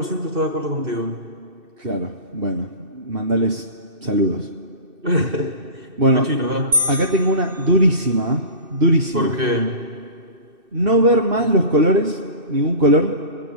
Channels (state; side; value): late; left; 2.6 ms